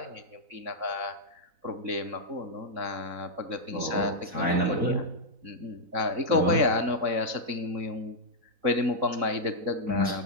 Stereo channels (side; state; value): left; late; 3.9 ms